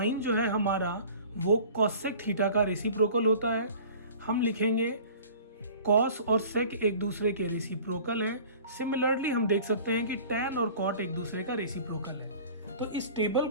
जो है हमारा वो कॉसेक थीटा का रेसिप्रोकल होता है। हम लिखेंगे कॉस और सेक एक दूसरे के रेसिप्रोकल है। सिमिलरली हम देख सकते हैं कि टैन और कॉट एक दूसरे का रेसिप्रोकल है। तो इस टेबल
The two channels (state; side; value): inverted; both; correlation -0.45